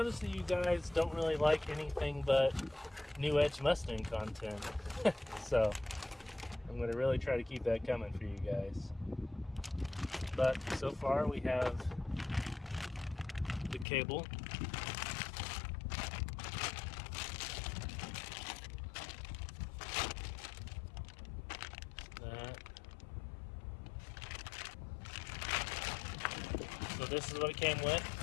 that you guys don't really like anything but New Edge Mustang content, so I'm going to really try to keep that coming for you guys. But so far we have the cable, so this is what it came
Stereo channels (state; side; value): drops out; right; at 13.9 s